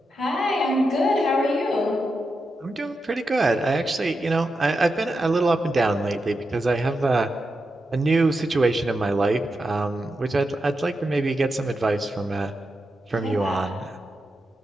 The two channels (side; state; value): both; normal; correlation 0.88